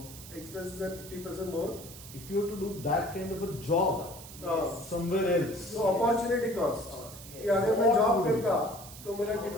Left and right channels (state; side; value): noise; right; hiss, 15 dB below the sound